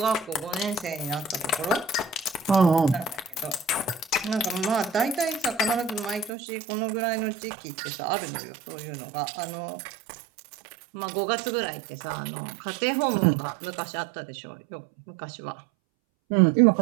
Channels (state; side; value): drops out; left; at 6.3 s